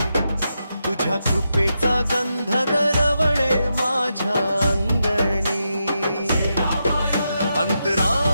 तुझ्या कृपेचा गंध दरवळे माझ्या अंगणी।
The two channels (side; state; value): both; inverted; correlation -0.86